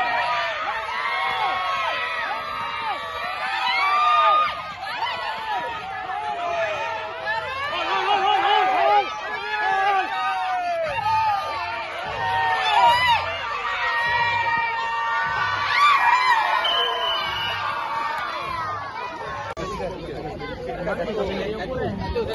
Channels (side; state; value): both; identical; correlation 1.00